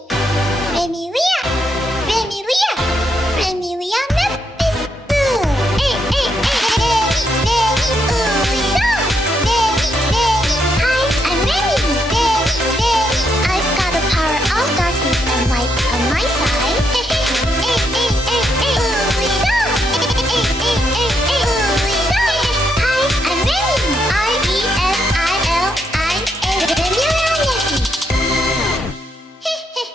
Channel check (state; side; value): normal; both; correlation 0.78